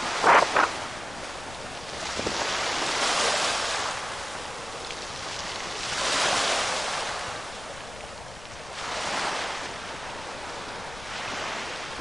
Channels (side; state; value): left; noise; rumble, 16 dB below the sound